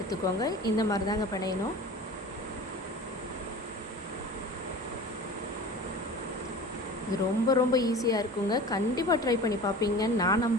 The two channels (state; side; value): normal; both; correlation 0.37